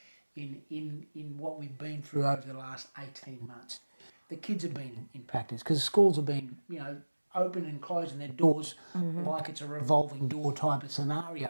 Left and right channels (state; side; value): inverted; both; correlation -1.00